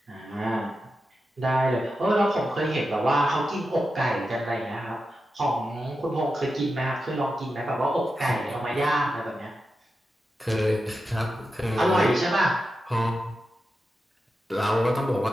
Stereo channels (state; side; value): normal; both; correlation 0.90